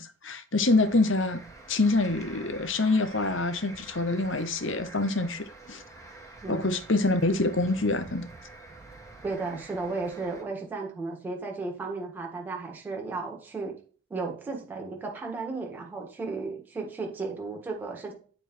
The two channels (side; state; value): both; normal; correlation 0.46